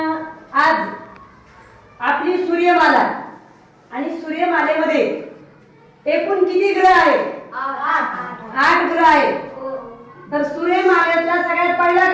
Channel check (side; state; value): both; identical; correlation 1.00